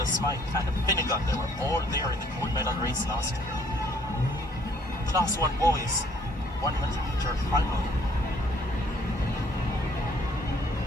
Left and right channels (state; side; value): normal; both; correlation 0.62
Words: Smythe, and Finnegan. They were all there in the gold medal race last year. Class 1 boys, 100-meter final.